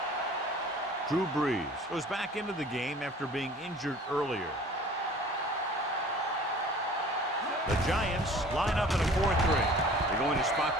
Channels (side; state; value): both; normal; correlation 0.47